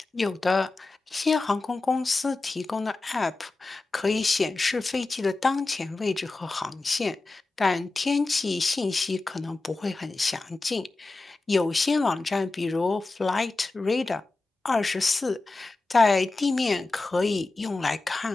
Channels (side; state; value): right; quieter; 3.3 dB